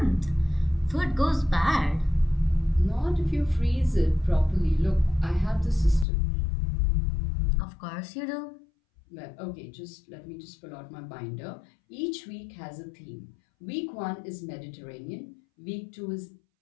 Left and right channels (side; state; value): right; drops out; at 6.1 s